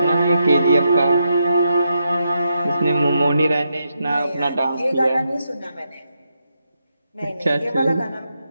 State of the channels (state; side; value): inverted; both; correlation -0.83